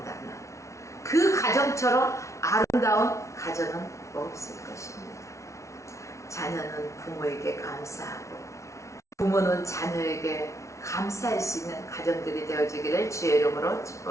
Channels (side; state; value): right; late; 0.14 ms